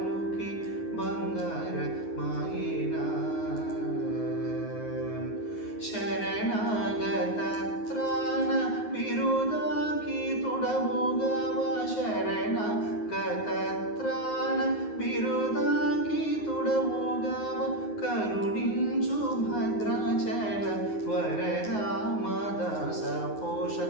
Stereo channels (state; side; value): late; right; 9.5 ms